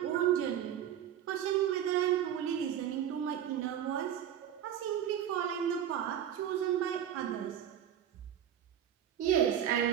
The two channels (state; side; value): quieter; left; 10.1 dB